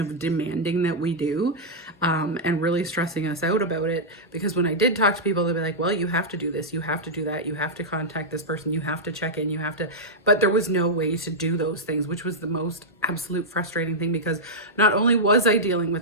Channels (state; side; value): normal; both; correlation -0.07